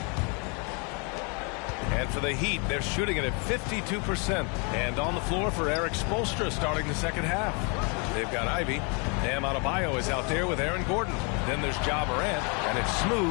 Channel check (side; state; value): right; quieter; 34.1 dB